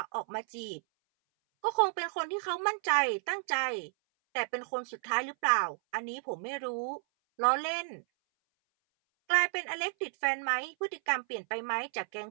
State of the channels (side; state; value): left; silent; 56 dB below the other